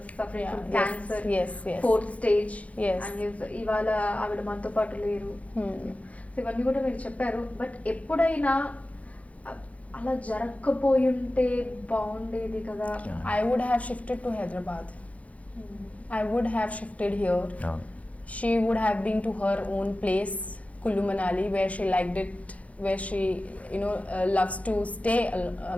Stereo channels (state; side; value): late; right; 0.067 ms